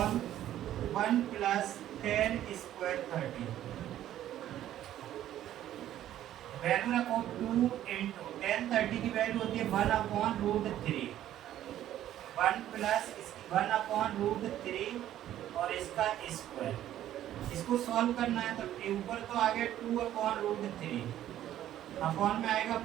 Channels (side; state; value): left; quieter; 12.3 dB